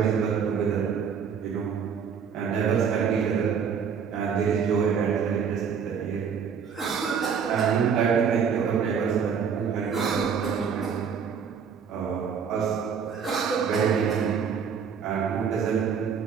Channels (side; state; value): left; quieter; 6.8 dB